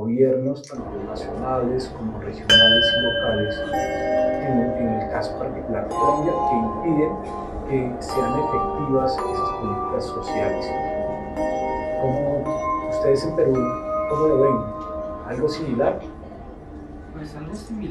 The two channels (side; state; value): both; identical; correlation 1.00